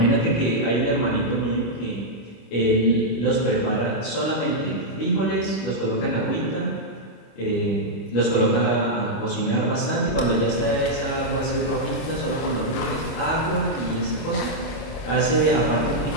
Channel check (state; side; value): late; right; 25 ms